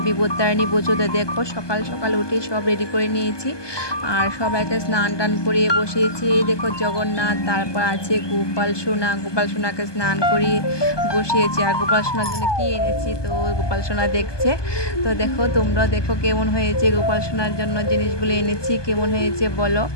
বিপত্তারিণী পুজোতে দেখো সকাল সকাল উঠে সব রেডি করে নিয়েছি আর সবাইকে স্নান টান করিয়ে বসিয়েছি। এই দেখো জগন্নাথ, তারপর আছে গোপাল সোনা। গোপাল সোনাকে স্নান করিয়ে বসিয়েছি। আর গোপাল সোনার জন্য কী এনেছি তো গোপাল সোনা দেখছে। তো দেখো তোমরাও দেখো কেমন হয়েছে। গোপাল সোনার জন্য জিনিসগুলো এনেছি, কেমন হয়েছে বলো।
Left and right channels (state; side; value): late; right; 1.2 ms